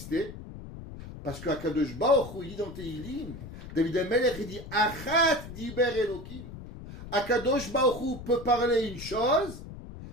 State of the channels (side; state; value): left; noise; rumble, 12 dB below the sound